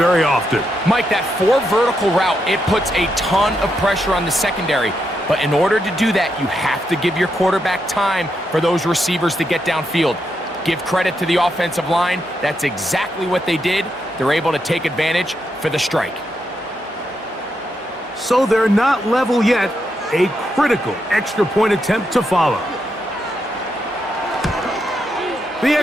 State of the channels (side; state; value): both; normal; correlation 0.82